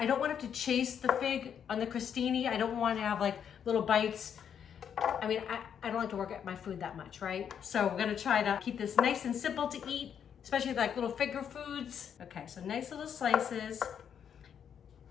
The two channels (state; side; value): quieter; right; 8.2 dB